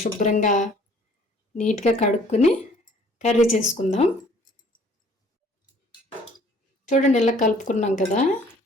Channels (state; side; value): normal; both; correlation 0.56